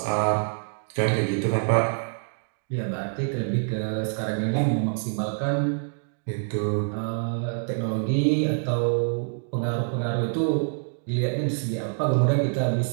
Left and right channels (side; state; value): left; silent; 61 dB below the other